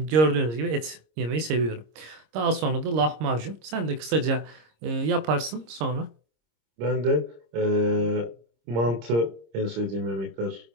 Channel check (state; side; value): late; left; 26 ms